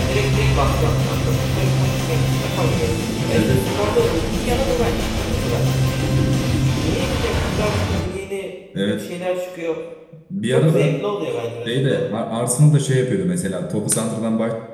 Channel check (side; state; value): both; identical; correlation 1.00